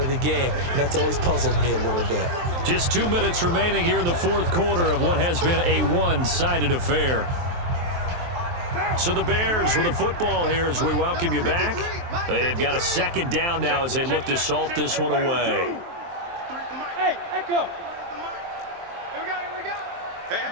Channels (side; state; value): left; late; 23 ms